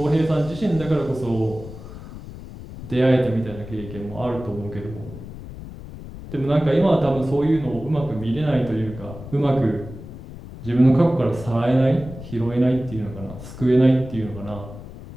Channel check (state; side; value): noise; left; rumble, 13 dB below the sound